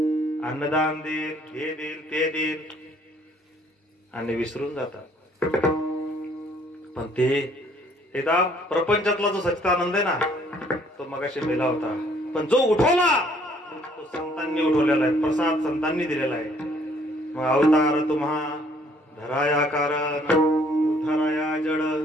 अन्नदान देईल, हे देईल ते देईल आणि विसरून जातात. पण ते एकदा प्रपंचातला जो सच्चिदानंद आहे ना, तो मगाशी मेला होता. पण जो उठवला तो संतांनी उठवलेला आहे. प्रसाद संतांनी दिलेला आहे. मग अवतार तुम्हा धराया कारण उठाराया जड.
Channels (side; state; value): both; normal; correlation 0.62